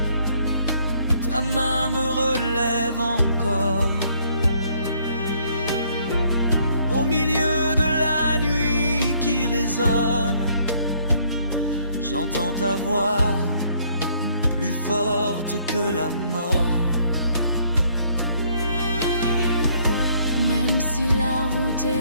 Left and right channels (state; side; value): inverted; both; correlation -0.65